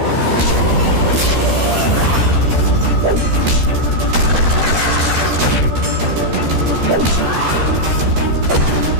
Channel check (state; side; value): late; left; 13 ms